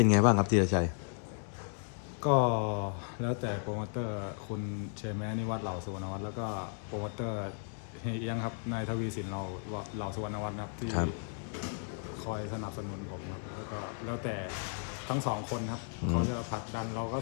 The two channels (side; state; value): right; silent; 55 dB below the other